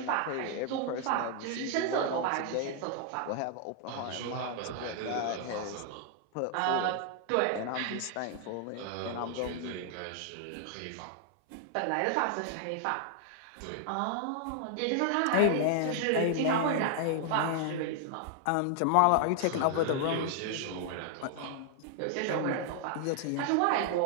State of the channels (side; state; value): both; different; correlation 0.00